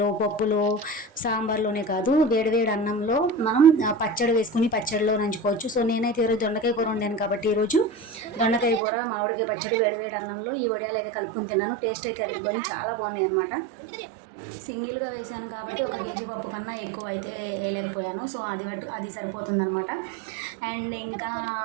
పప్పులో, సాంబార్లోనే కాదు, వేడివేడి అన్నంలో మనం పచ్చడి వేసుకుని పచ్చడిలో నంచుకోవచ్చు. సో నేనైతే ఈరోజు దొండకాయ కూర వండాను కాబట్టి ఈరోజు దొండకాయ కూర, మామిడికాయ పచ్చడి వేడివేడి అన్నంలో ఈ వడియాలు అయితే కలుపుకుని తిన్నాను. టేస్ట్ అయితే అదిరిపోయి చాలా బాగున్నాయి అనమాట. సింగిల్గా వేసాను కాబట్టి 1 కేజీ పప్పు కన్నా ఎక్కువ అయితే వేయలేకపోయాను. సో అది సరిపోతుందనమాట. అండ్ ఇంకా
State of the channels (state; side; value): drops out; left; at 8.8 s